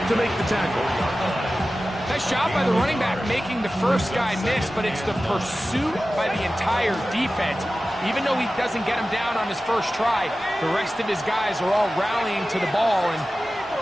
to make the tackle. Nice job by the running back making the first guy miss, but it's the pursuit by the entire defense. Even though he doesn't get him down on his first try, the rest of his guys are all rallying to the ball, and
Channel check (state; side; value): normal; both; correlation 0.95